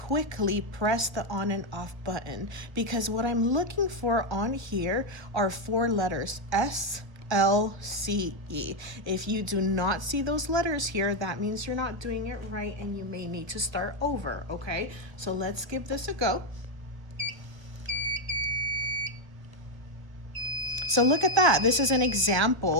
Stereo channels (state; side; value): late; left; 1.4 ms